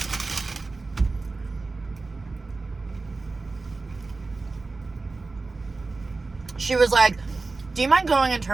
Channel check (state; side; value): quieter; left; 3.7 dB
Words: She was like, do you mind going and